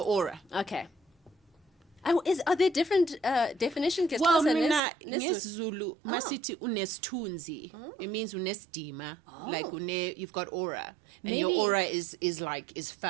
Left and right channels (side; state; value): left; drops out; at 4.8 s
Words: aura. Okay. Are there different definitions? Well, nesiZulu masithi unesithunzi. It means unesidima. Like you've got aura. And your aura is